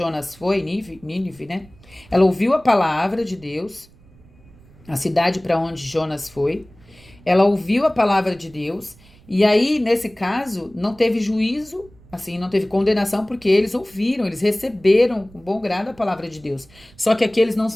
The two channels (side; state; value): right; noise; rumble, 26 dB below the sound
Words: foi, Nínive, né? Ela ouviu a palavra de Deus, a cidade para onde Jonas foi. Ela ouviu a palavra de Deus, e aí, nesse caso, não teve juízo, assim, não teve condenação, porque eles ouviram, eles receberam com bom grado a palavra de Deus. Só que aqui eles não